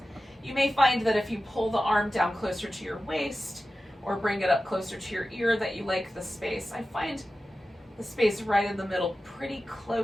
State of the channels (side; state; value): both; normal; correlation 0.94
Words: You may find that if you pull the arm down closer to your waist or bring it up closer to your ear that you like the space. I find the space right in the middle pretty